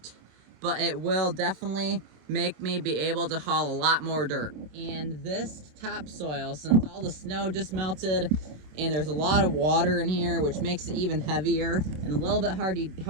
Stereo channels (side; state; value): left; late; 27 ms